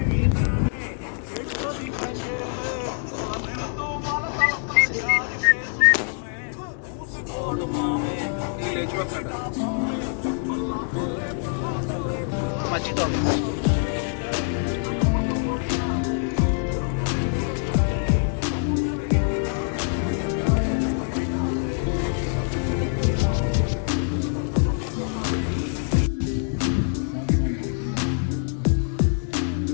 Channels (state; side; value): silent; right; 62 dB below the other